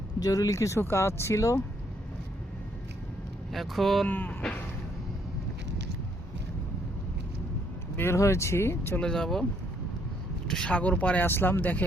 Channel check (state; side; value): normal; both; correlation 0.70